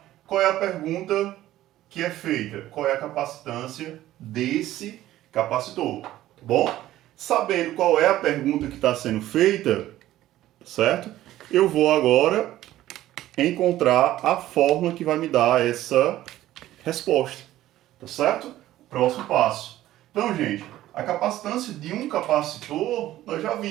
qual é a pergunta que é feita? Qual é a capacitância desse capacitor, tá bom? Sabendo qual é a pergunta que está sendo feita, certo? Eu vou agora encontrar a fórmula que vai me dar essa resposta, tá certo? Próximo passo. Então, gente, a capacitância de um capacitor, nós já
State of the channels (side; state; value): left; quieter; 14.4 dB